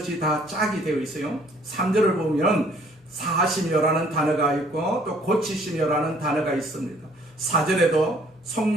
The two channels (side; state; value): both; normal; correlation 0.60